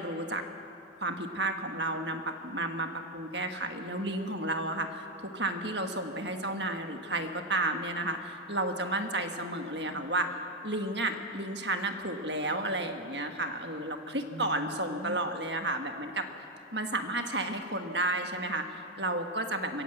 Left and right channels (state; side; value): normal; both; correlation 0.06